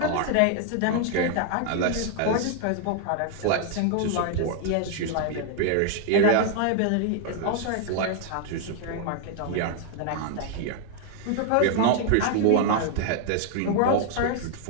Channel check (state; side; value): different; both; correlation 0.00